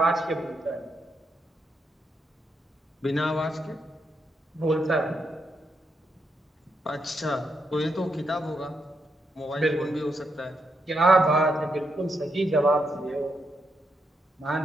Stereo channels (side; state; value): both; normal; correlation 0.81